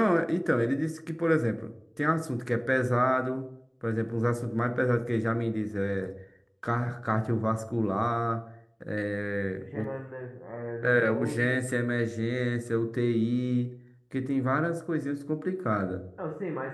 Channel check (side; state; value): both; identical; correlation 1.00